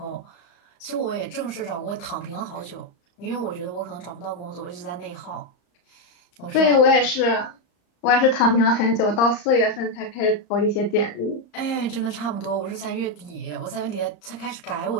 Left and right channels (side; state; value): right; late; 34 ms